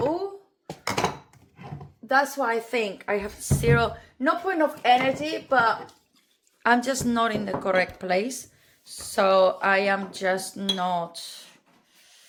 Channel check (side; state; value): both; identical; correlation 1.00